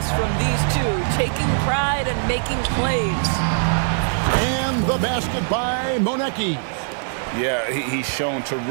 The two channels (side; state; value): left; silent; digital silence